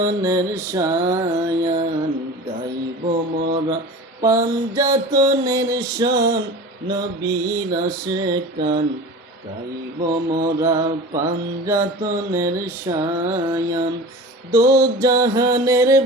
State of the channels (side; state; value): both; normal; correlation 0.35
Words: শায়ান, গাইব মোরা পাঞ্জাতনের শান, নবীর আশেকান। গাইব মোরা পাঞ্জাতনের শায়ান, দো জাহানের